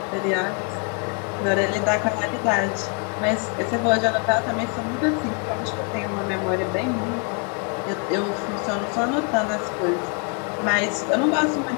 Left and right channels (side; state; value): right; quieter; 37.4 dB